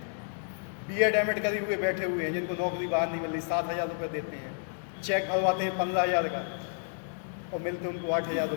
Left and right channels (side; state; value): right; silent; digital silence